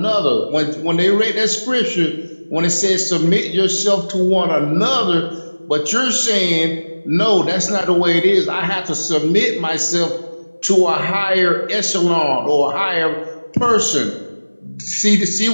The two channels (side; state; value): both; inverted; correlation -1.00